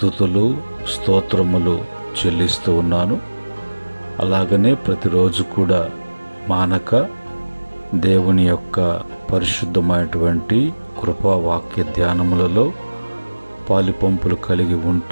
స్తోత్రములు చెల్లిస్తూ ఉన్నాను. అలాగనే ప్రతిరోజు కూడా మానక దేవుని యొక్క పరిశుద్ధమైనటువంటి కృపా వాక్య ధ్యానములలో పాలిపంపులు కలిగి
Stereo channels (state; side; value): inverted; both; correlation -1.00